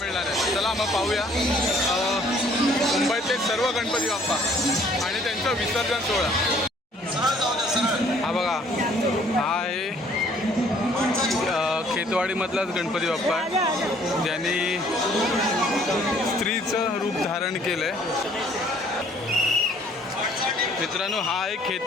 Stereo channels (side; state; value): both; normal; correlation 0.59